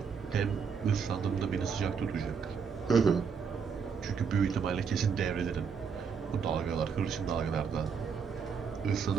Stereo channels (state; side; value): quieter; left; 6.2 dB